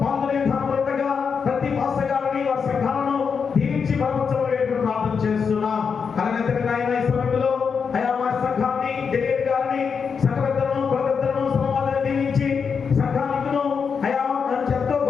పాల్గొనే విధానంలో ఉండగా ప్రతి పాస్టర్ గారిని వారి సంఘాలను దీవించి బలపరచబడేట్టు ప్రార్థన చేస్తున్నాం. అలాగే నాయన ఈ సమయంలో అయ్యా మా సంఘాన్ని డెలిగేట్ గారిని సంఘ పెద్దలను కుల పెద్దలను సమాజాన్ని దీవించి సంఘానికును అయ్యా ఎంతో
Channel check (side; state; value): right; quieter; 6.0 dB